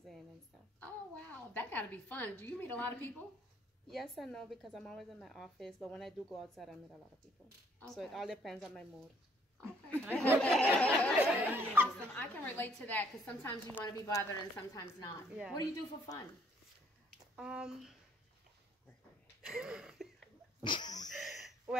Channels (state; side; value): normal; both; correlation 0.64